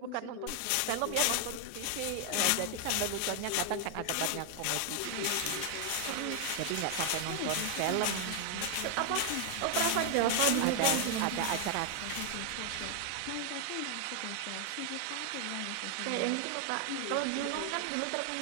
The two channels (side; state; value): both; different; correlation 0.00